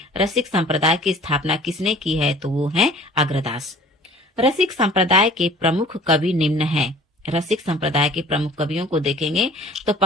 रसिक संप्रदाय की स्थापना किसने की है? तो वो है अग्रदास। रसिक संप्रदाय के प्रमुख कवि निम्न हैं। रसिक संप्रदाय के प्रमुख कवियों को देखेंगे तो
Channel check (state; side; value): normal; both; correlation 0.49